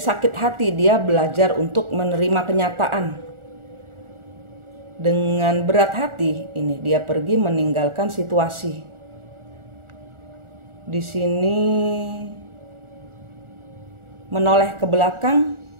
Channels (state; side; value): late; left; 1.4 ms